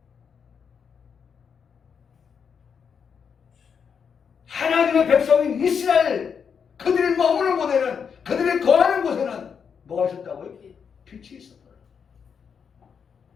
하나님의 백성인 이스라엘 그들이 머무는 곳에는 그들이 거하는 곳에는 뭐가 있었다고요? 빛이 있었더라.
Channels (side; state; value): right; quieter; 6.7 dB